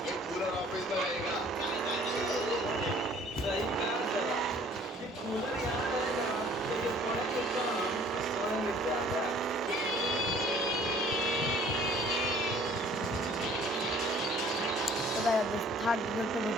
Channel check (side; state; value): both; normal; correlation 0.54